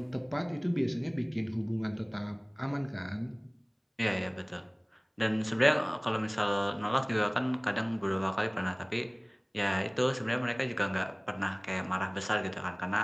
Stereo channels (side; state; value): both; identical; correlation 1.00